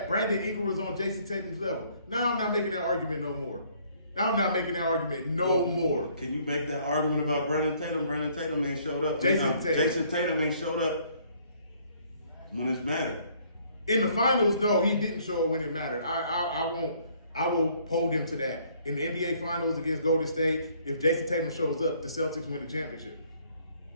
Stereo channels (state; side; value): inverted; both; correlation -0.63